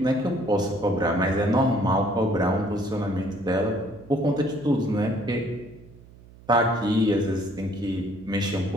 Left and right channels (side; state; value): right; noise; hum, 22 dB below the sound